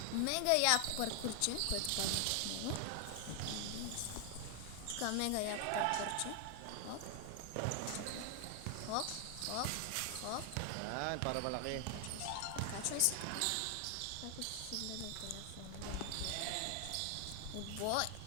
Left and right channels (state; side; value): different; both; correlation 0.00